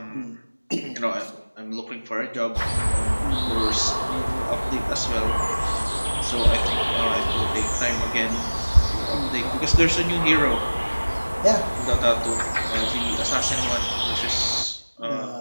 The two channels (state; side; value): inverted; both; correlation -1.00